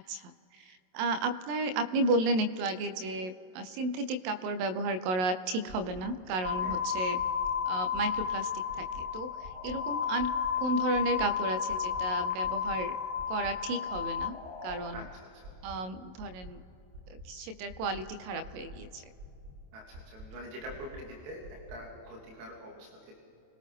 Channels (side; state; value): left; late; 27 ms